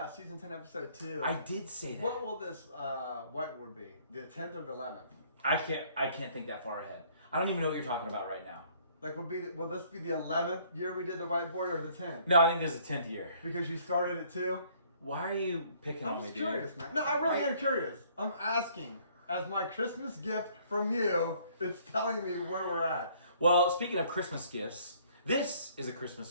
season 10, episode 2. I did say that. What will this, what would be? The 10th or the 11th? I can't think that far ahead. I don't even know what you're talking about right now. Like, will this be the 11th year we did the whiteboard or the 10th? No, I think this is the 10th year. Because you started it too? Why are you picking on me, dude? I'm curious, man. No, I really am curious. I'm asking. As my Christmas gift from you, it's telling me where we're at. Well, speaking of Christmas gifts, this is a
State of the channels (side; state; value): both; inverted; correlation -0.61